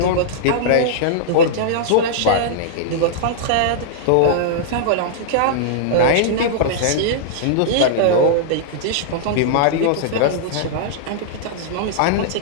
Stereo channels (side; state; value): both; different; correlation -0.02